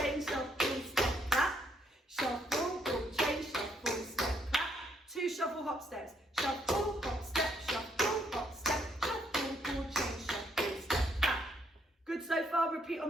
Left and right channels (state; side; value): normal; both; correlation 0.72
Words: shuffle, step, clap. Shuffle, ball chain, shuffle, step, clap. 2 shuffle hop steps. Shuffle, hop step, shuffle, hop step, shuffle, ball chain, shuffle, step, clap. Good so far, repeat on